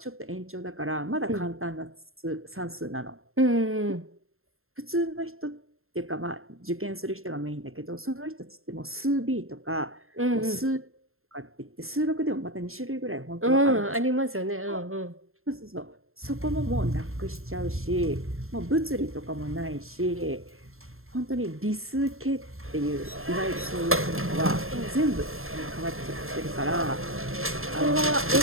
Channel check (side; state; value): left; late; 0.61 ms